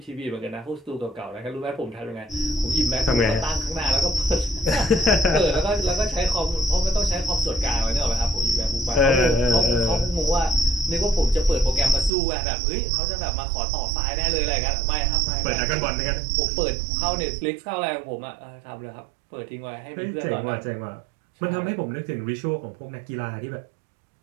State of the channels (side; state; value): left; drops out; at 12.1 s